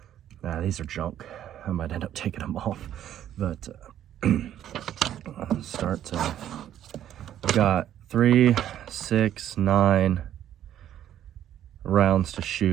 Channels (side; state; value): left; quieter; 11.1 dB